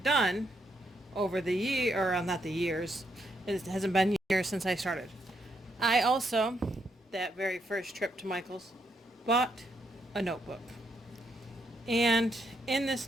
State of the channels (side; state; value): both; normal; correlation 0.77